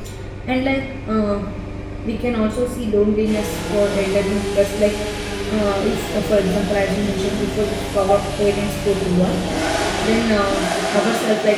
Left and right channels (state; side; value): identical; both; correlation 1.00